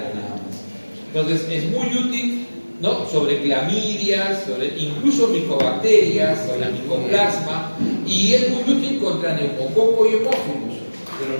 nada más. Entonces es muy útil, ¿no?, sobre clamidias, sobre incluso micobacterias, sobre micoplasma, y es muy útil contra neumococo y hemófilos, pero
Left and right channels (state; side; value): inverted; both; correlation -1.00